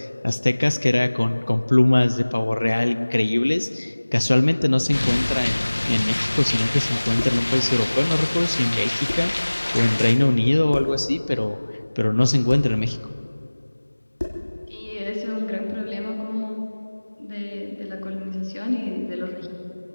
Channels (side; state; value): both; inverted; correlation -1.00